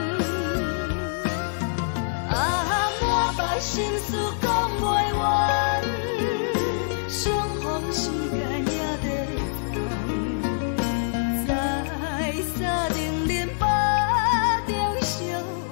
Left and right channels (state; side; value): silent; right; 62 dB below the other